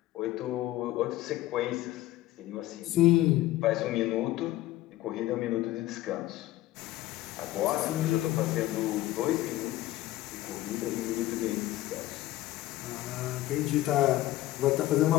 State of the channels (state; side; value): quieter; right; 15.5 dB